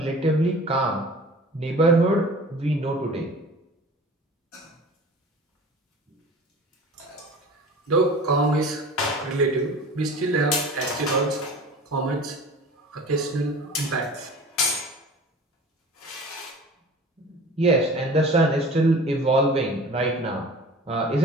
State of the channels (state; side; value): normal; both; correlation 0.41